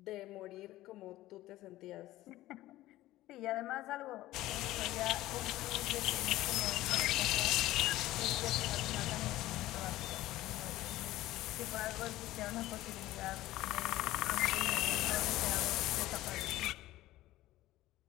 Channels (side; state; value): right; quieter; 16.2 dB